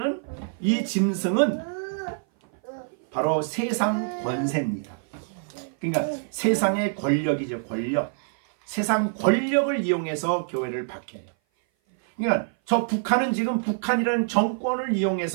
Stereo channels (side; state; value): left; silent; 57 dB below the other